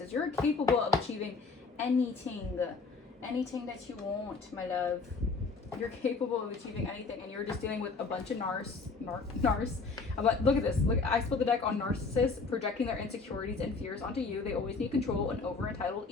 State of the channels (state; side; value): quieter; right; 4.4 dB